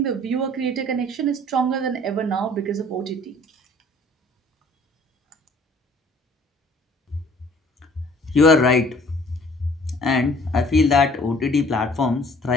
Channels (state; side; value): normal; both; correlation 0.54